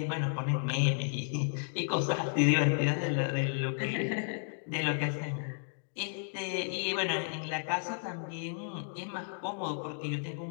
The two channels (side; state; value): right; silent; digital silence